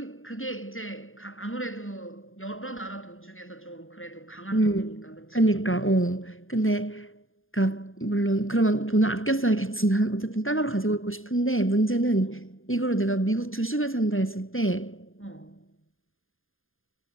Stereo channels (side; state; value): right; late; 0.59 ms